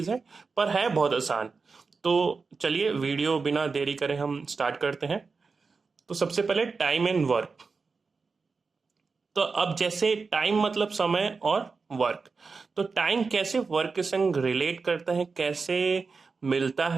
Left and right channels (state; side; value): quieter; left; 4.6 dB